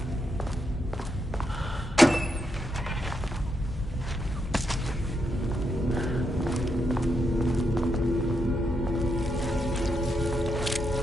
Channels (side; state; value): both; normal; correlation 0.81